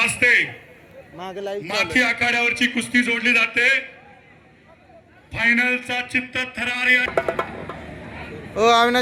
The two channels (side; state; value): both; identical; correlation 1.00